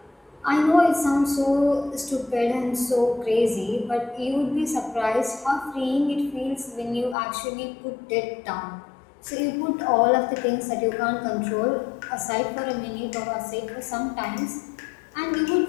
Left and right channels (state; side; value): drops out; right; at 7.2 s